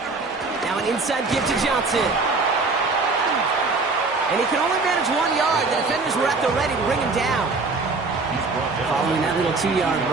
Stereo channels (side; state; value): left; quieter; 3.9 dB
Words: An inside give to Johnson. And he can only manage 1 yard. The defenders were at the ready to bring him down. Following that little 2-yard